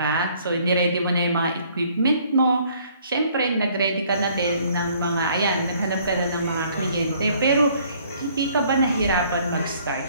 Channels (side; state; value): both; inverted; correlation -0.60